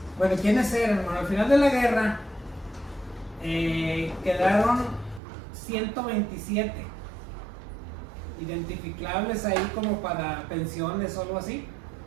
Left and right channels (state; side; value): drops out; left; at 5.2 s